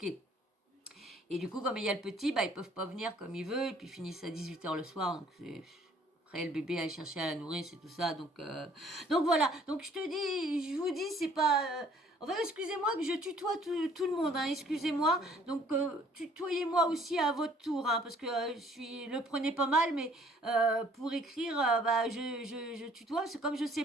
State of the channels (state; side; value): normal; both; correlation 0.58